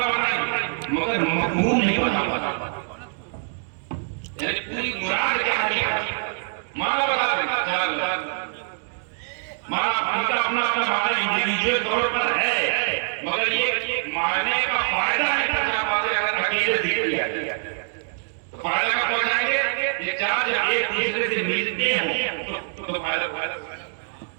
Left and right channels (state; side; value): silent; left; 57 dB below the other